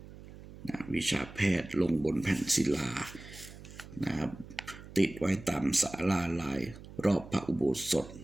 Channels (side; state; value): right; noise; hum, 16 dB below the sound